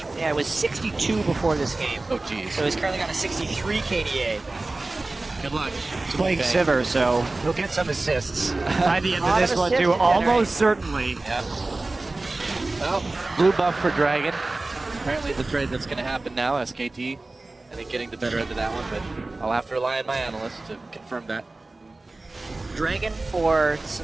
Yeah, it was 62 before this game. Oh, jeez. So he's currently got a 63 KDA. Good luck. He's playing Sivir, so he'll get some assists by the end of this one, too. Almost certainly. Yeah. Well, blue buff for Dragon. Apparently the trade that's going to happen now, SKT. I think getting the better end of that one, but I'll have to rely on my analyst to confirm that. Dragon for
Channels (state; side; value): quieter; left; 3.1 dB